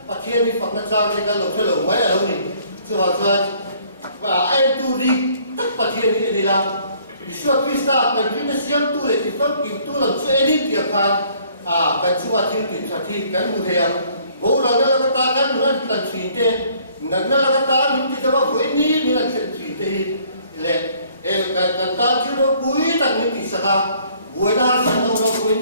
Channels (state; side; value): inverted; both; correlation -0.60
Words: bà thiên thì phật nó cho cái lộ chơi lộ mấy ở đâu nhỉ chưa vào chưa và ai tu đi tất bà thiên như thế là vì suốt Krista cần vì nó siam tu lệ thì phân kim tu làm cho edit tiệc khan cần chúng ta thiếu thì chả thi cần một thề bố là nó là cái ta cần nó cần chỉ thế nó là cái ta mình thì đâu với ní mình là chỉ thì lệ cái ta chứ nó cuối tặng mình thì sao buổi đó sang đâu nó với